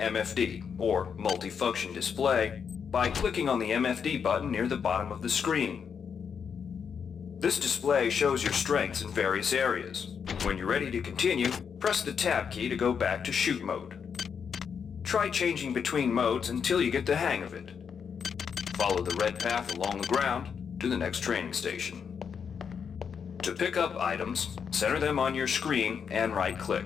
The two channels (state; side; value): quieter; right; 6.8 dB